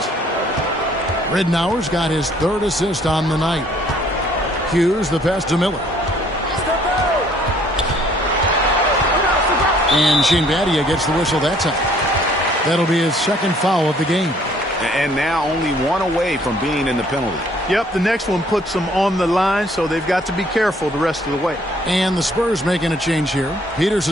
Ridnour's got his 3rd assist on the night. Hughes, the pass to Miller. And Shane Battier gets the whistle that time. That'll be his 2nd foul of the game. And now only 1 away from being in the penalty. Yep, the next one puts them on the line, so they've got to be careful the rest of the way. And the Spurs making a change here.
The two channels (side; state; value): both; normal; correlation 0.61